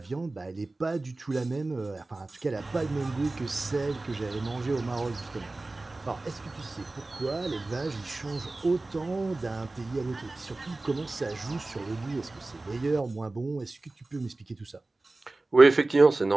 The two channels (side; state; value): left; quieter; 3.1 dB